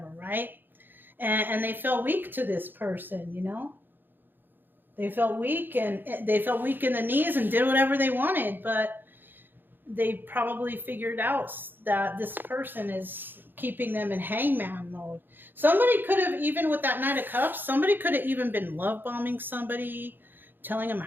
right? And they felt weak to this person, you know? They felt weak, and they felt weak in the knees and did whatever they wanted, but they probably figured out that this person is keeping them in hangman mode. Somebody could have, even with that Knight of Cups, somebody could have even been love bombing somebody, telling them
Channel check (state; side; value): late; left; 0.095 ms